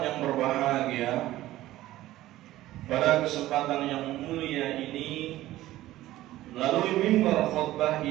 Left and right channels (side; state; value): left; quieter; 15.6 dB